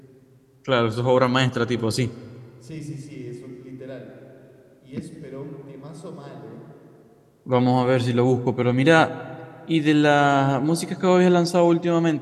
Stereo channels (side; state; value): both; identical; correlation 1.00